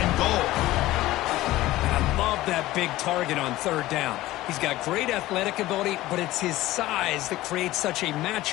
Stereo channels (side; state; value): right; quieter; 16.8 dB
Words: goal. Love that big target on third down. He's got great athletic ability, but it's his size that creates such a